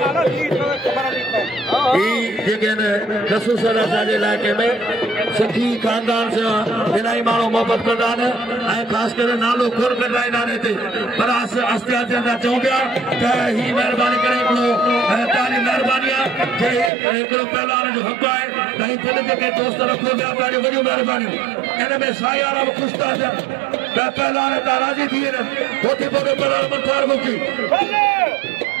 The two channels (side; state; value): left; drops out; at 16.9 s